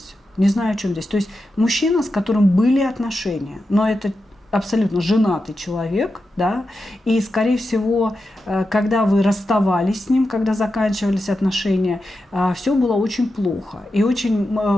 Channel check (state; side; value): normal; both; correlation 0.90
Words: Не знаю, о чем здесь. То есть мужчина, с которым были отношения, но это абсолютно женатый человек, да, и, скорее всего, когда вы расставались с ним, когда заканчивались отношения, все было очень плохо и очень,